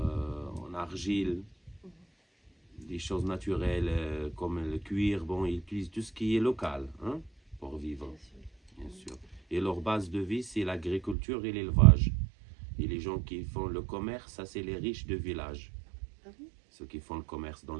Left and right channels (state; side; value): drops out; left; at 11.2 s